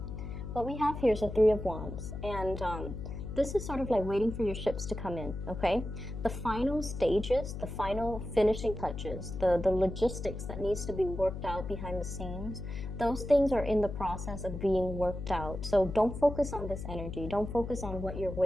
What we have here is a Three of Wands, and this is sort of like waiting for your ships to come in, okay? The final stages, the final finishing touches, the logistics that needs to be worked out behind the scenes, those things are in the process of being worked out. So don't focus on this energy. Don't focus on what you're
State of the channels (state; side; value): noise; left; hum, 7 dB below the sound